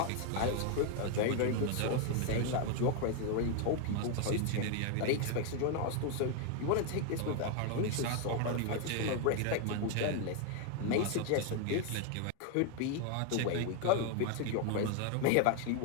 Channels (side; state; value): both; different; correlation 0.01